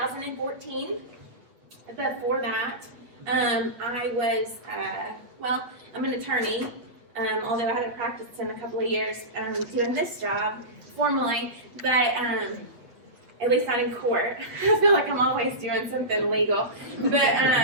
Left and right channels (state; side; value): late; left; 8.3 ms